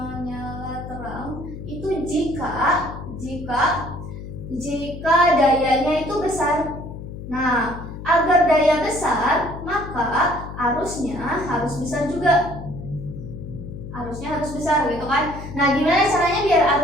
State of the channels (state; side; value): noise; left; hum, 10 dB below the sound